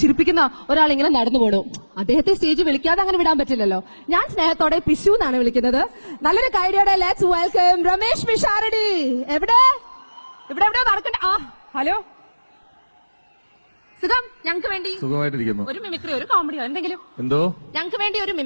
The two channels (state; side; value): inverted; both; correlation -1.00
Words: ഒരാൾ ഇങ്ങനെ നടന്നു പോണു. അദ്ദേഹത്തെ സ്റ്റേജ് വിളിക്കാതെ അങ്ങനെ വിടാൻ പറ്റില്ലല്ലോ. ഞാൻ സ്നേഹത്തോടെ പിശു എന്നാണ് വിളിക്കുന്നത്. നല്ലൊരു കൈഡിയോടെ ലെറ്റ്സ് വെൽക്കം രമേശ് പിഷാരടി. എവിടെ നടക്കണ്ട. ഹലോ, സുഖം. ഞങ്ങൾക്ക് വേണ്ടി സുഖമായിട്ടിരിക്കുന്നു. ഒരു മിമിക്രിയോ ഒരു കോമഡിയോ എന്തെങ്കിലും. എന്തോ ഞങ്ങൾക്ക് വേണ്ടി ഒരു